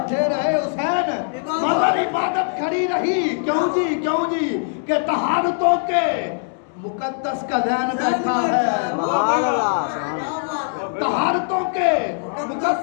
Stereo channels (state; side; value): silent; right; 65 dB below the other